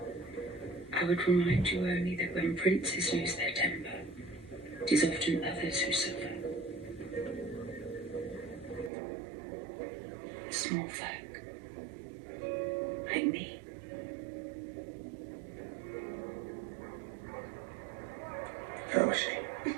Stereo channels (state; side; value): drops out; left; at 8.9 s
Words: I would remind you only that when princes lose their temper, it is often others who suffer. Small folk, like me. How was she?